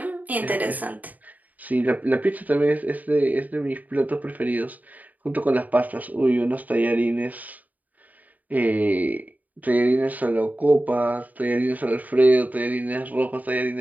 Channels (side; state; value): left; late; 0.078 ms